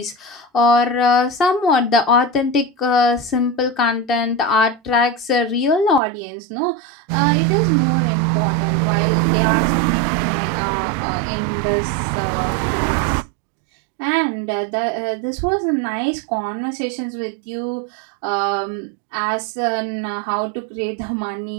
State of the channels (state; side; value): drops out; left; at 6.0 s